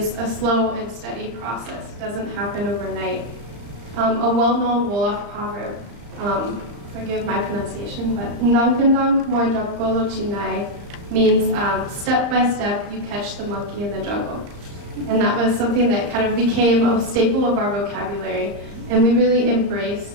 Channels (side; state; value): left; late; 35 ms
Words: a slow and steady process. It doesn't happen overnight. A well-known Wolof proverb, forgive my pronunciation, but "Ndank moy jab golo chinai" means step by step you catch the monkey in the jungle. And that was something that kind of became a staple of our vocabulary, and we really embraced